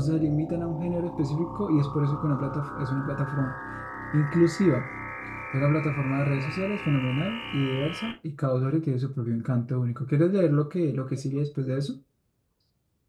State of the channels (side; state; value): both; identical; correlation 1.00